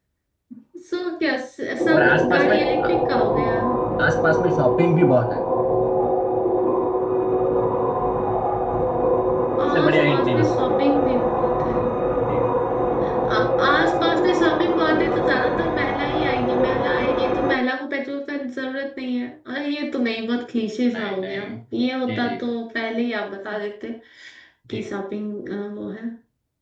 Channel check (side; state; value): both; identical; correlation 1.00